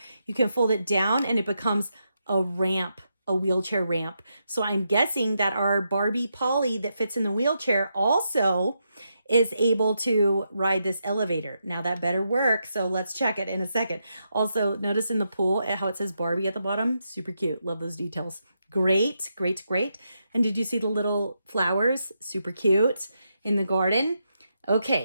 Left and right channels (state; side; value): inverted; both; correlation -0.83